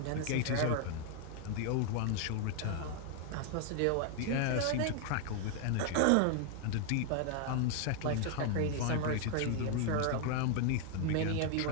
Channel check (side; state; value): both; different; correlation 0.00